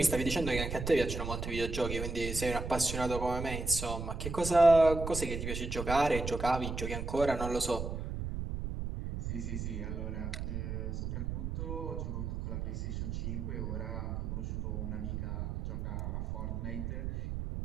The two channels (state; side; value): noise; right; rumble, 4 dB below the sound